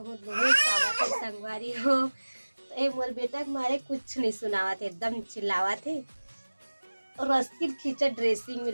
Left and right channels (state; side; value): inverted; both; correlation -1.00